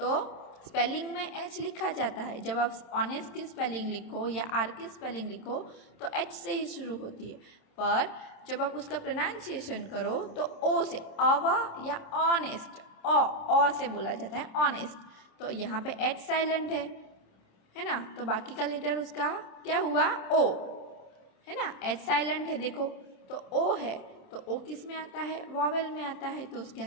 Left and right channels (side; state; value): right; late; 26 ms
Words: स्पेलिंग में एच लिखा जाता है, जब आप ऑनेस्ट की स्पेलिंग लिखो या आर की स्पेलिंग लिखो तो एच से ही शुरू होती है, पर जब आप उसका प्रोनाउंसिएशन करो तो ओ से, अवा या ऑनेस्ट, ओ से बोला जाता है ऑनेस्ट। तो यहाँ पे एच साइलेंट है ना, तो बाकी का लेटर उसका क्या हुआ, ओ, है ना, एच साइलेंट है देखो, तो ओ है, तो ओ किस में आता है, वॉवेल में आता है, तो उसके